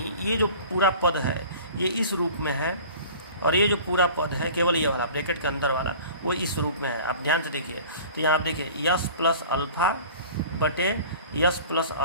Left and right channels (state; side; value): inverted; both; correlation -0.43